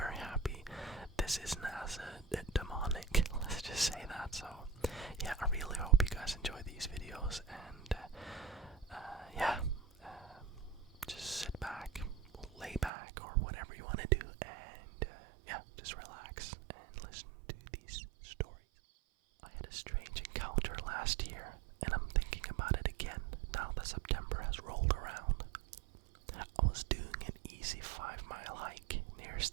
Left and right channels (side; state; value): left; drops out; at 12.9 s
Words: happy, this isn't as demonic, let's just say that. So yeah, I really hope you guys enjoy these videos, and just sit back, lay back, or whatever you want to do, and just relax and listen to these stories. I had a strange encounter last year, and I'm thinking about it again now that September has rolled around. I was doing an easy 5-mile hike near